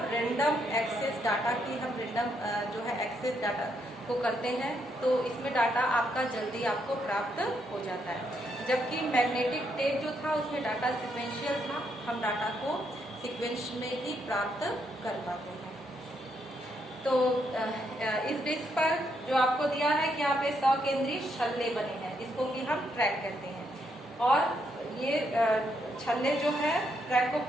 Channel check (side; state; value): both; normal; correlation 0.76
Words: रैंडम एक्सेस डाटा की हम रैंडम जो है एक्सेस डाटा को करते हैं, तो इसमें डाटा आपका जल्दी आपको प्राप्त हो जाता है। जबकि मैग्नेटिक टेप जो था उसमें डाटा सिक्वेंशियल था, हम डाटा को सीक्वेंस में ही प्राप्त कर पाते हैं। तो इस डिस्क पर जो आपको दिया है कि यहाँ पे 100 केंद्रीय छल्ले बने हैं, इसको कि हम ट्रैक कहते हैं। और ये छल्ले जो है ट्रैक को